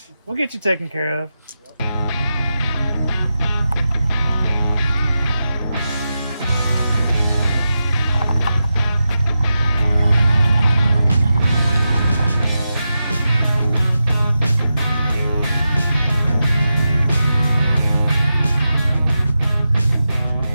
We'll get you taken care of.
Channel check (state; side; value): inverted; both; correlation -0.90